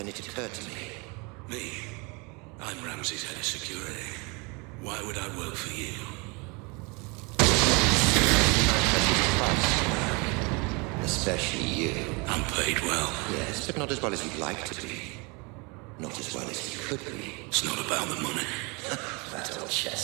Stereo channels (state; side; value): quieter; left; 29.4 dB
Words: it occurred to me. Me? I'm Ramsey's head of security. Why would I work for you? Especially you. I'm paid well. Yes, but not as well as you'd like to be. Not as well as you could be. It's not about the money. That old